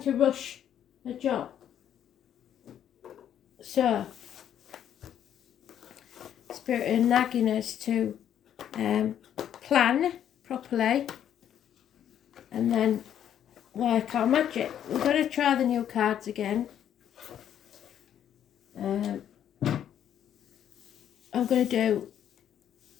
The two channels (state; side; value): quieter; right; 10.0 dB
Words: rush a job. So, Spirit are nagging us to plan properly and then work our magic. We're going to try the new cards again. I'm going to do,